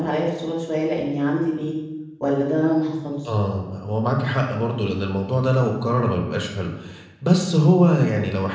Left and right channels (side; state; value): both; identical; correlation 1.00